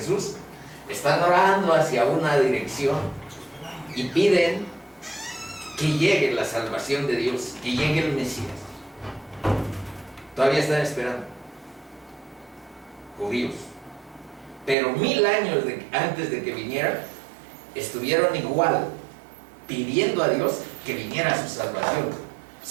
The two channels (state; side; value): drops out; left; at 14.8 s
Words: Están orando hacia una dirección y piden que llegue la salvación de Dios, que llegue el Mesías. Todavía están esperando, judíos. Pero 1000 años antes de que viniera, estuvieron igual, pidiendo a Dios que viniera su salvación,